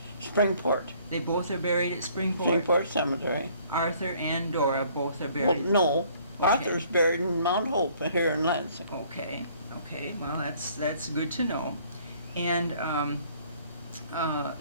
Springport. They both are buried at Springport? Springport Cemetery. Arthur and Dora both are buried? Well, no. Okay. Arthur's buried in Mount Hope here in Lansing. Okay. Well, that's good to know. And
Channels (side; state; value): both; inverted; correlation -0.60